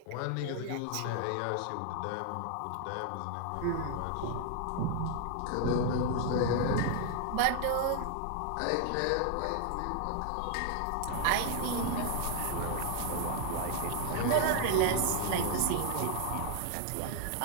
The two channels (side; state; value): both; different; correlation 0.00